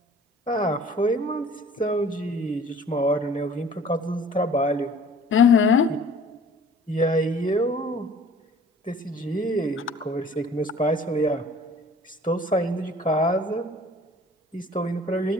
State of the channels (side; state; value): both; normal; correlation 0.50